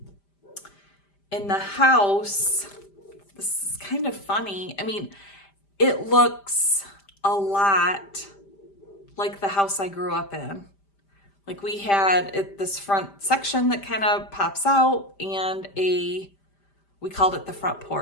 the house, this is kind of funny. I mean, it looks a lot like the house I grew up in. Like we had this front section that kind of pops out, and we called it the front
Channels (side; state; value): right; late; 5.0 ms